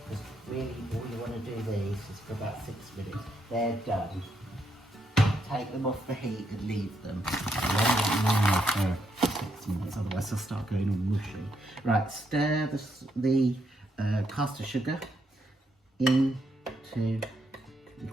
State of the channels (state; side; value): normal; both; correlation 0.77